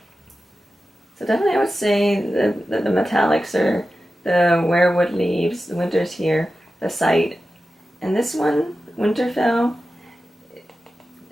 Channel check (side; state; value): both; normal; correlation 0.93